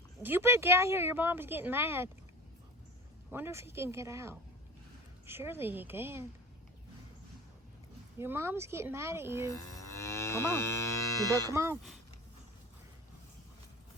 You better get out here. Your mom's getting mad. Wonder if he can get out. Surely he can. Your mom's getting mad at you. Come on. You better come on.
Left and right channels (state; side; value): normal; both; correlation 0.35